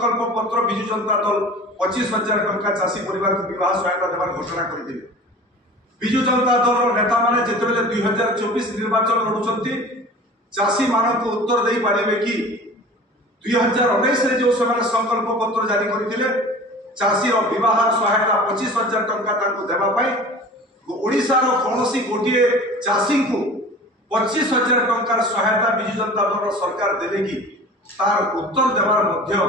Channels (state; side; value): normal; both; correlation 0.40